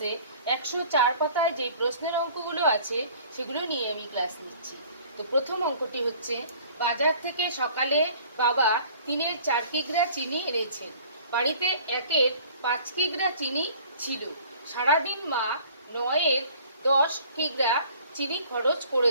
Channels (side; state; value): both; inverted; correlation -0.50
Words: ১০৪ পাতায় যে প্রশ্নের অঙ্কগুলো আছে সেগুলো নিয়ে আমি ক্লাস নিচ্ছি। তো প্রথম অঙ্কটি হচ্ছে, বাজার থেকে সকালে বাবা ৩-এর ৪ কিগ্রা চিনি এনেছেন। বাড়িতে ১-এর ৫ কিগ্রা চিনি ছিল। সারাদিন মা ৯-এর ১০ কিগ্রা চিনি খরচ